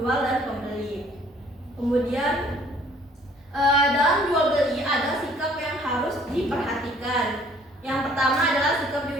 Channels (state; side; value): normal; both; correlation 0.58